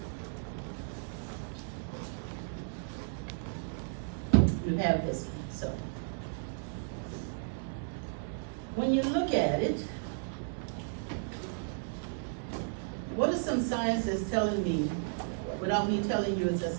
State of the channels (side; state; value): left; silent; 55 dB below the other